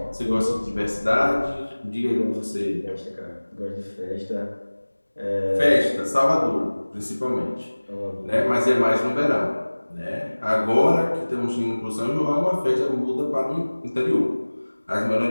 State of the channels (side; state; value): both; inverted; correlation -1.00